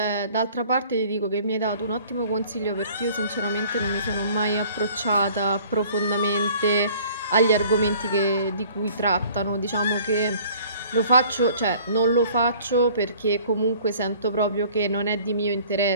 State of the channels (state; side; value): inverted; both; correlation -0.52